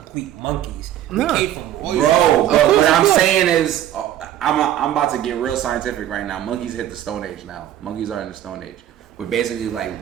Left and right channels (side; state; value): left; quieter; 12.0 dB